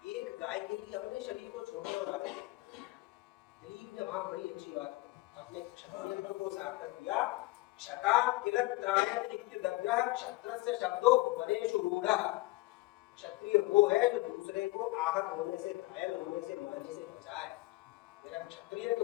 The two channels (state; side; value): quieter; right; 20.3 dB